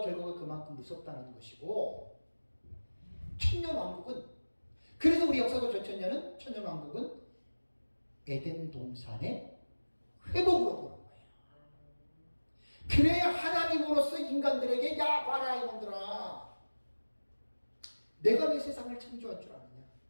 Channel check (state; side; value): inverted; both; correlation -1.00